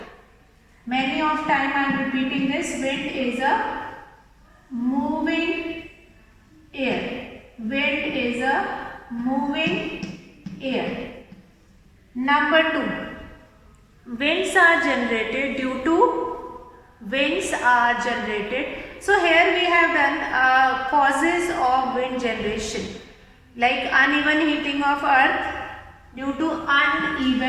Many of time I am repeating this. Wind is a moving air. Wind is a moving air. Number 2. Winds are generated due to So here we have done causes of wind generation, like uneven heating of earth. Due to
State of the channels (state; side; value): identical; both; correlation 1.00